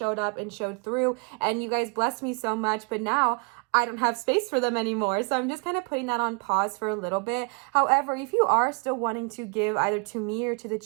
up and showed through, and you guys blessed me so much, but now I don't have space for them anymore. So I'm just kind of putting that on pause for a little bit. However, if you are still wanting to give either to me or to the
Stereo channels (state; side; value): quieter; left; 34.4 dB